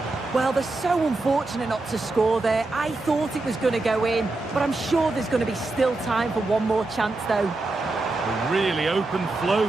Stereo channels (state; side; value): quieter; left; 3.1 dB